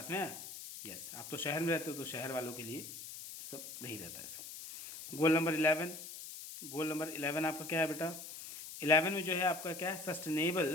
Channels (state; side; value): noise; left; hiss, 11 dB below the sound